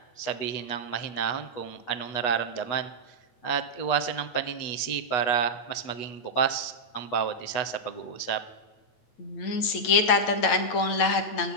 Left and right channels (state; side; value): late; right; 8.9 ms